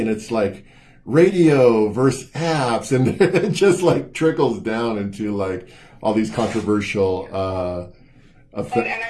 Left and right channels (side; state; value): both; identical; correlation 1.00